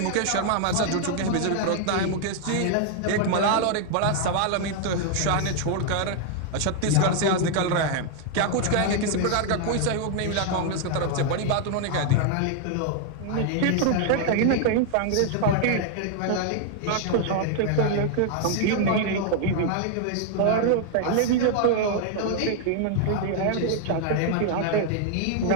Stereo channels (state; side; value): different; both; correlation 0.00